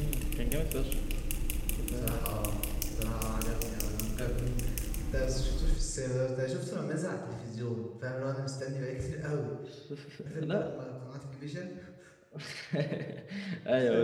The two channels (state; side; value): identical; both; correlation 1.00